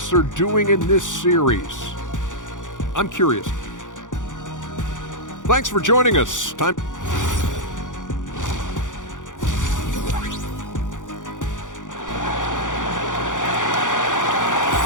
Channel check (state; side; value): late; right; 0.87 ms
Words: are doing in this series, I'm curious. Thanks for joining us. Time.